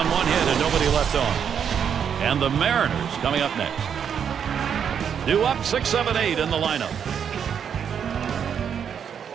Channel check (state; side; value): quieter; left; 7.8 dB